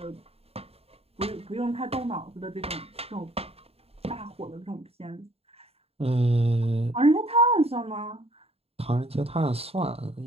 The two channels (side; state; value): left; late; 0.29 ms